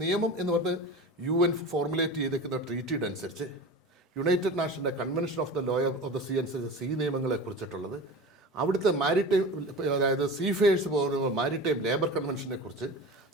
നിയമം എന്ന് പറഞ്ഞ് UN ഫോർമുലേറ്റ് ചെയ്തേക്കുന്ന ട്രീറ്റിയുടെ അനുസരിച്ച്, യുണൈറ്റഡ് നാഷൻ്റെ convention of the law of the sea അനുസരിച്ച് സീ നിയമങ്ങളെ കുറിച്ചിട്ടുള്ളത്, അവിടുത്തെ മാരിടൈം, അതായത് സീഫെയേഴ്സ് പോകുന്ന മാരിടൈം ലേബർ കൺവെൻഷനെ കുറിച്ച്,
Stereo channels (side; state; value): both; normal; correlation 0.32